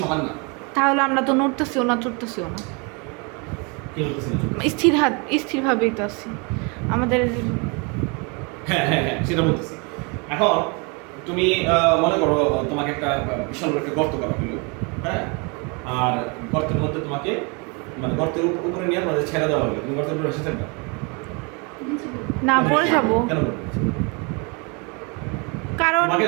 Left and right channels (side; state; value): left; quieter; 31.7 dB